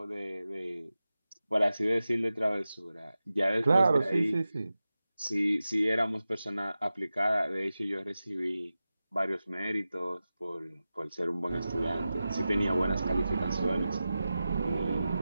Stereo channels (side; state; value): both; inverted; correlation -0.94